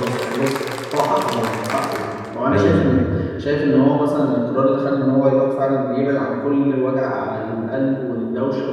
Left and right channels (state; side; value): identical; both; correlation 1.00